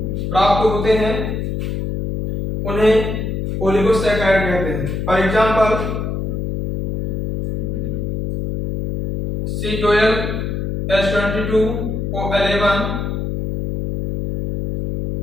प्राप्त होते हैं, उन्हें ओलिगोसैकेराइड कहते हैं। फॉर एग्जांपल C12H22O11,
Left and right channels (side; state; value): left; noise; hum, 3 dB below the sound